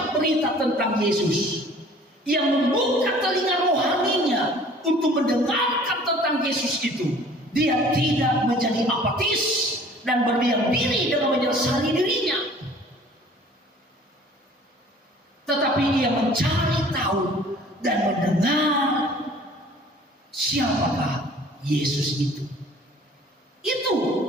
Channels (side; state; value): both; normal; correlation 0.50